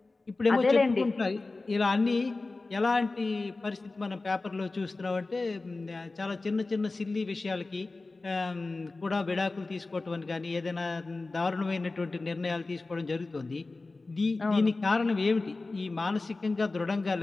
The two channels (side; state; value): right; quieter; 3.4 dB